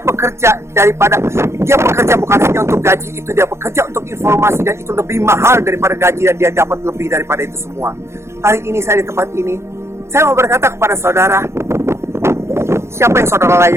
bekerja bukan hanya untuk gaji itu, dia bekerja untuk informasi dan itu lebih mahal daripada gaji dan dia dapat lebih daripada itu semua. Hari ini saya di tempat ini, saya mau berkata kepada saudara, siapa yang saudara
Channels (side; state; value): left; late; 0.13 ms